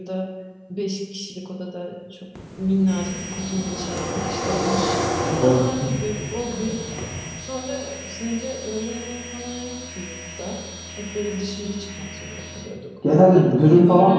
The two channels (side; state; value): both; identical; correlation 1.00